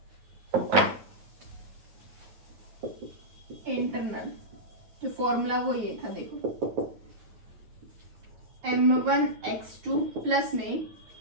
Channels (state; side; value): late; left; 9.4 ms